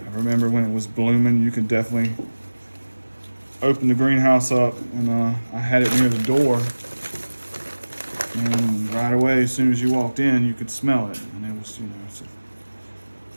remember when it was blooming, you could definitely open the greenhouse up, and I had it near the door, and right away, as soon as you walked in, you could smell it, and it was, you know, it's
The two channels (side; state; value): both; inverted; correlation -1.00